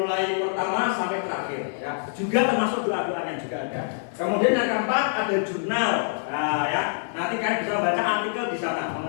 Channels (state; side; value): silent; right; digital silence